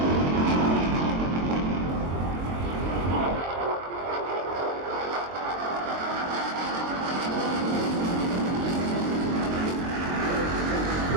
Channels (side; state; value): left; late; 22 ms